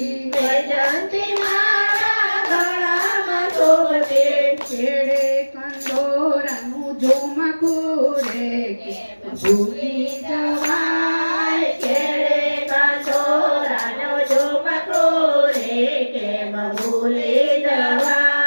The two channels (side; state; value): both; inverted; correlation -1.00